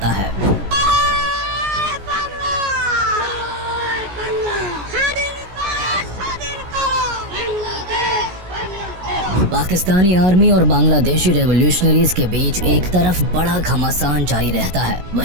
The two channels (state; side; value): late; left; 17 ms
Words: है। पाकिस्तानी आर्मी और बांग्लादेशी रेवोल्यूशनरीज के बीच एक तरफ बड़ा घमासान जारी रहता है,